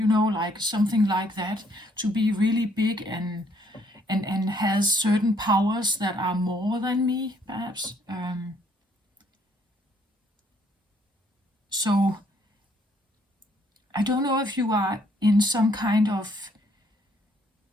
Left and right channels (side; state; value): both; normal; correlation 0.66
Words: know, like something like that, to be really big and has certain powers that are more than me, perhaps. So I don't know if you are in some kind of,